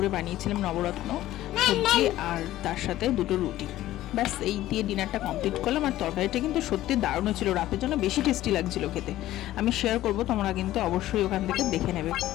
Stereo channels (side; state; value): right; quieter; 14.7 dB